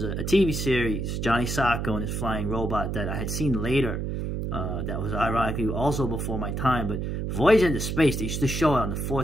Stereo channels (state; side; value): noise; right; hum, 2 dB below the sound